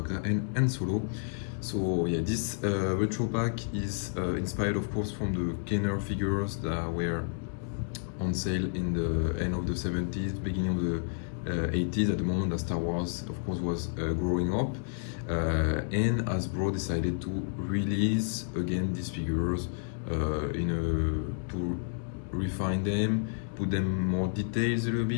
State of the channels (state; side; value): silent; right; digital silence